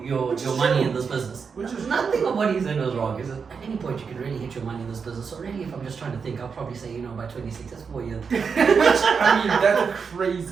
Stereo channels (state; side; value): quieter; left; 5.8 dB